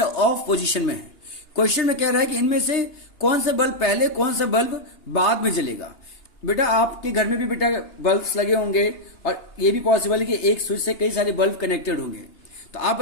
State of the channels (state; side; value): late; right; 2.9 ms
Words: ऑफ पोजीशन में है। क्वेश्चन में कह रहा है कि इनमें से कौन सा बल्ब पहले, कौन सा बल्ब बाद में जलेगा। बेटा आपके घर में भी बेटा बल्ब्स लगे होंगे, और ये भी पॉसिबल है कि एक स्विच से कई सारे बल्ब कनेक्टेड होंगे। तो आप